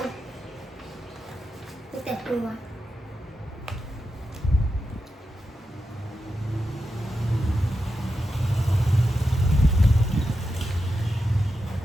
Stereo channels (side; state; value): both; normal; correlation 0.89